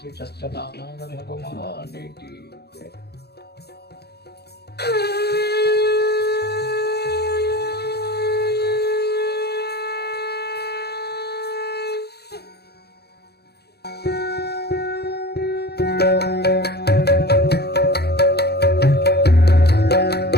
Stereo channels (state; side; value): late; right; 0.47 ms